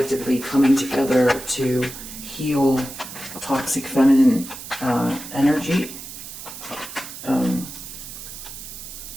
coming together to heal toxic feminine energy.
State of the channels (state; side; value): noise; right; hiss, 12 dB below the sound